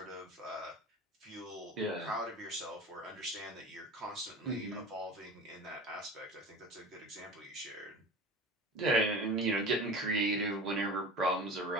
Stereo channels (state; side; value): normal; both; correlation 0.35